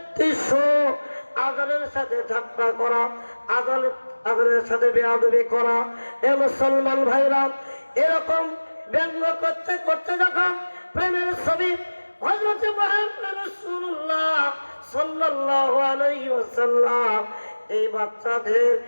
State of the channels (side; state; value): both; inverted; correlation -1.00